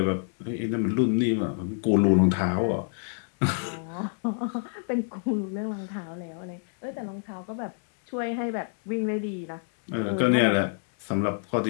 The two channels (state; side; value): silent; right; digital silence